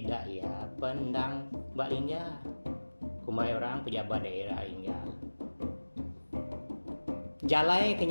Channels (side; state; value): both; inverted; correlation -1.00